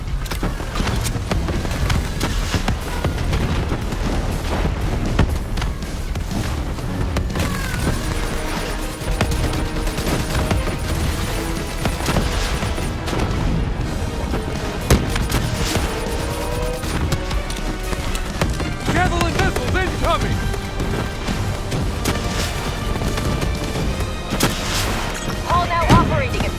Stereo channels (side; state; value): both; identical; correlation 1.00